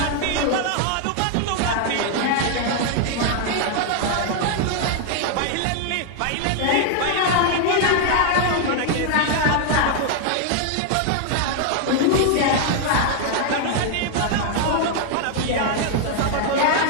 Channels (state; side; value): different; both; correlation 0.00